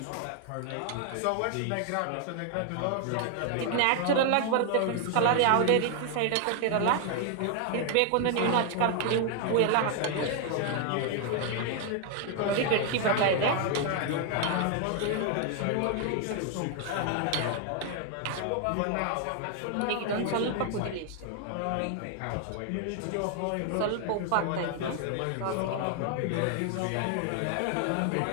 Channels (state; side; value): different; both; correlation 0.00